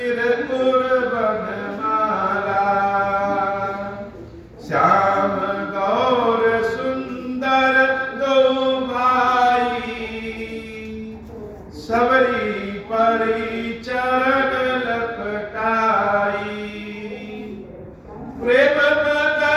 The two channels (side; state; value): both; identical; correlation 1.00